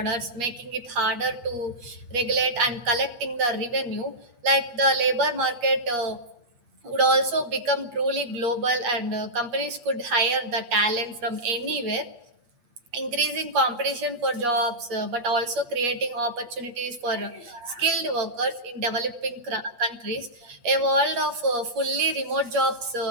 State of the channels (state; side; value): late; left; 8.4 ms